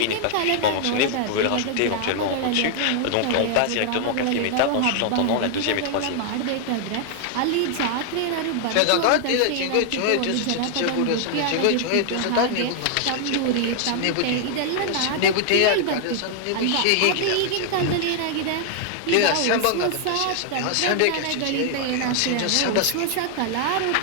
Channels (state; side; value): different; both; correlation 0.00